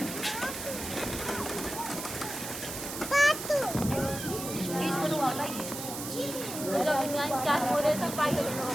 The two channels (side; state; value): right; noise; hiss, 7 dB below the sound